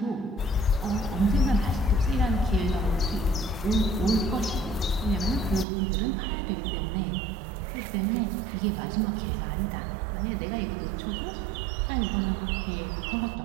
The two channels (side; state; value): left; drops out; at 5.7 s